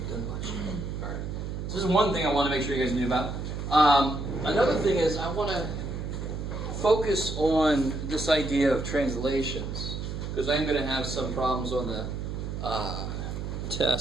done much. All right. So this is one thing I want to make sure you guys knew about. Another thing is I want to focus on this idea of translations, because I'm going to have some problems on the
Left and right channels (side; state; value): right; noise; hum, 5 dB below the sound